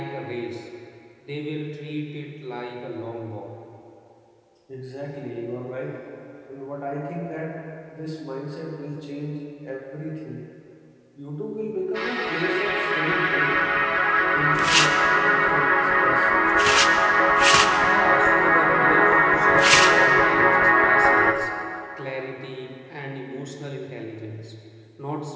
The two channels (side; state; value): both; identical; correlation 1.00